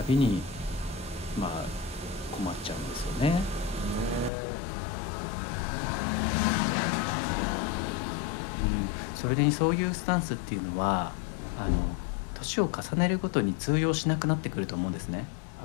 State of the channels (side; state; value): right; drops out; at 4.3 s